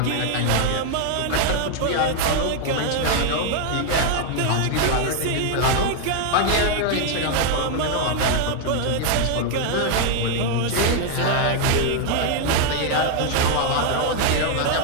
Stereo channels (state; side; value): different; both; correlation 0.00